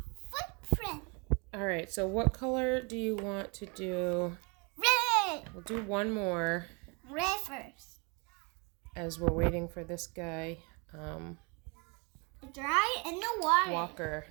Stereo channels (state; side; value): quieter; left; 31.8 dB